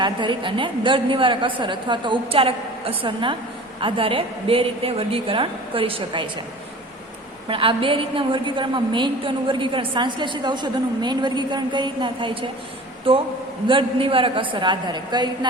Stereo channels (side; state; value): both; normal; correlation 0.41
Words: આધારિત અને દર્દ નિવારક અસર અથવા તો ઉપચારક અસરના આધારે બે રીતે વર્ગીકરણ કરી શકાય છે. પણ આ બે રીતના વર્ગીકરણમાં મેઇન તો એનું વર્ગીકરણ સંશ્લેષિત ઔષધોનું મેઇન વર્ગીકરણ કઈ રીતના થાય છે તો દર્દ નિવારક અસર આધારે, કઈ